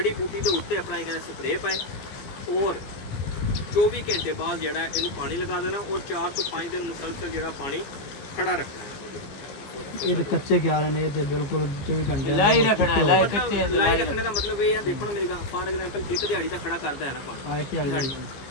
ਬੂਟੀ ਦੇ ਉੱਤੇ ਆਪਣਾ ਇਹ ਕਹਿੰਦੇ ਸਪਰੇਅ ਪਾਏ ਔਰ 24 ਘੰਟੇ ਬਾਅਦ ਜਿਹੜਾ ਇਹਨੂੰ ਪਾਣੀ ਲਗਾ ਦੇਣਾ ਔਰ 4 ਤੋਂ 5 ਦਿਨ ਮੁਸਲਸਲ ਜਿਹੜਾ ਪਾਣੀ ਖੜਾ ਰੱਖਣਾ ਹੈ ਇਹ ਤੇ ਕੱਚੇ ਕਿਆਰੇ ਨੇ ਤੇ ਬਿਲਕੁਲ 24 ਘੰਟੇ लाई रखना है लाई ਮਤਲਬ कच्चे ਲਾਈ ਰੱਖਣੇ ਦਾ ਮਤਲਬ ਇਹ ਹੈ ਦੇਖੋ ਨਾ ਮੇਰੀ ਗੱਲ ਫਾਰ ਐਗਜ਼ਾਮਪਲ ਇੱਕ ਦਿਹਾੜੀ ਤਾਂ ਖੜਾ ਕਰਦਾ ਹੈ ਨਾ ਪਾਣੀ ਆਏ ਕਿ ਦਿਹਾੜੀ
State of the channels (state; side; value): late; right; 15 ms